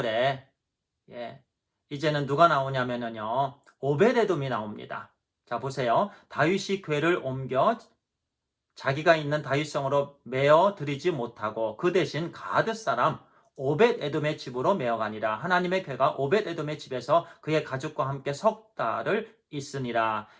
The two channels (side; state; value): both; identical; correlation 1.00